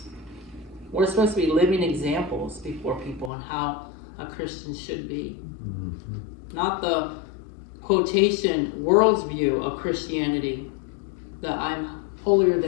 We're supposed to be living examples before people on how a Christian should be. Mm-hmm. Not the quotation world's view of Christianity, the I'm holier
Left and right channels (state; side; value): drops out; right; at 3.3 s